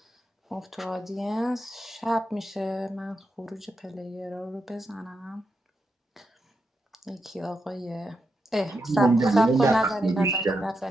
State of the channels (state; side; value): normal; both; correlation 0.84